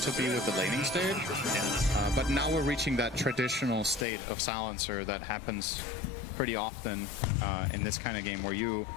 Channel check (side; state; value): right; drops out; at 4.0 s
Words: to be with the laning stage. But now we're reaching that traditional state of Silencer that happens pretty often in this kind of game, where you